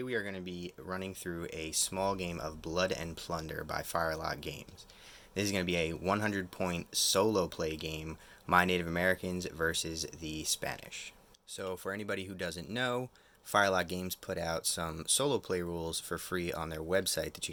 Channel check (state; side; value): identical; both; correlation 1.00